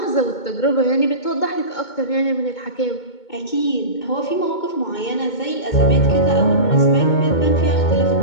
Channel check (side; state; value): right; late; 2.2 ms